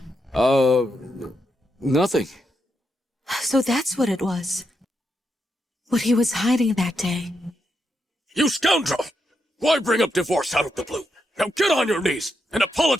Nothing. So that's what it was. What he was hiding that day. You scoundrel! Why bring up divorce out of the blue? Now get on your knees and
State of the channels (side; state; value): both; normal; correlation 0.82